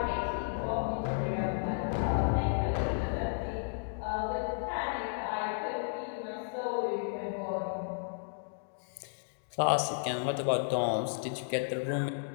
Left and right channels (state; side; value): silent; right; digital silence